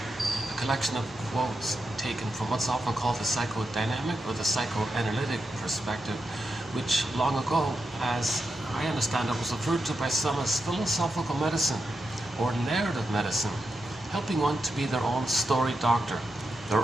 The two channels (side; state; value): both; normal; correlation 0.87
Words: a collection of quotes taken from what's often called the psychodynamic or the psychoanalytic perspective, which long ago, as I understand it, was referred to by some as philosophical medicine or narrative medicine, helping one to be their own story doctor,